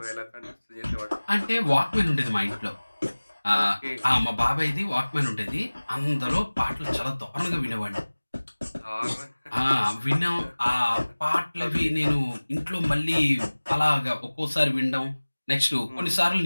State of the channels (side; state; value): both; inverted; correlation -1.00